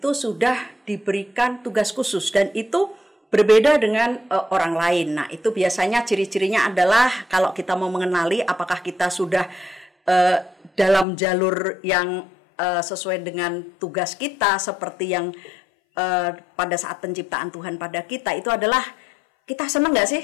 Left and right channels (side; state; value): right; drops out; at 11.1 s